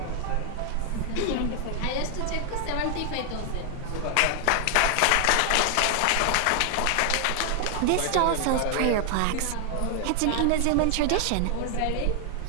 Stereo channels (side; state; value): both; different; correlation 0.00